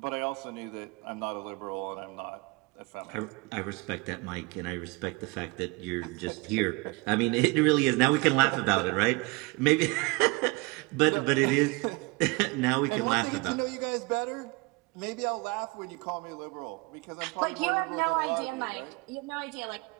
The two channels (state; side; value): quieter; left; 26.2 dB